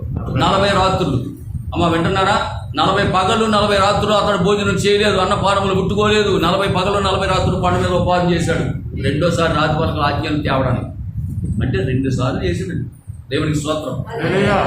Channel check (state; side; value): identical; both; correlation 1.00